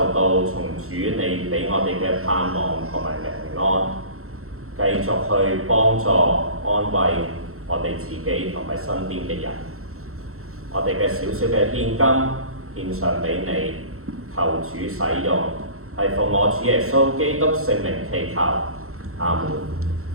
到從主你俾我哋嘅盼望同埋平安，繼續去幫助安慰我哋自己同埋身邊嘅人。我哋嘅少少嘅獻金獻上俾你，求主使用，係奉我主耶穌基督聖名祈求，阿門。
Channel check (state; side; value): late; left; 0.63 ms